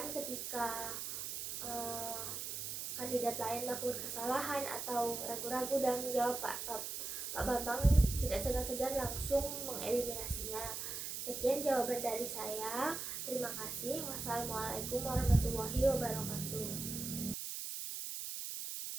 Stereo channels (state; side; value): noise; right; hiss, 5 dB below the sound